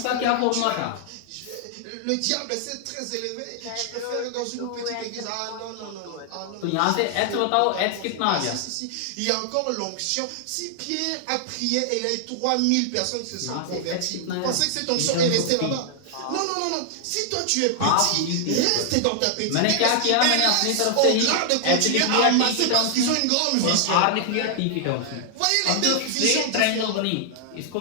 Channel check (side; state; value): both; different; correlation -0.01